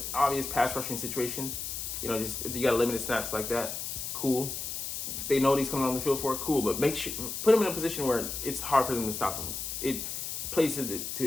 obvious pass rushing situations. Just if you got limited snaps like that, cool. They know what he's coming on the field for, cool. But make sure put him in a position where it's hard for them to stop him. It plays it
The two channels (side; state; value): left; noise; hiss, 5 dB below the sound